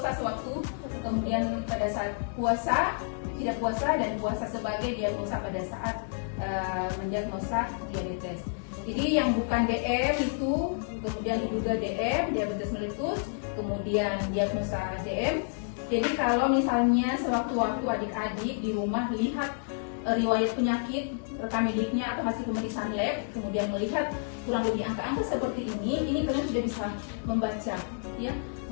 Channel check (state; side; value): silent; right; digital silence